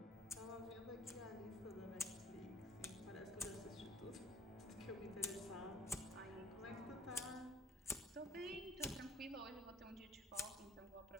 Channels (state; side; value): normal; both; correlation 0.54